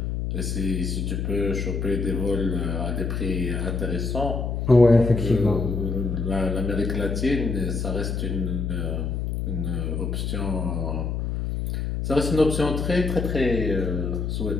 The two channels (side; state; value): left; noise; hum, 2 dB below the sound